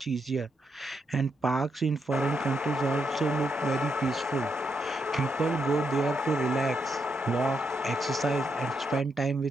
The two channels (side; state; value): both; normal; correlation 0.80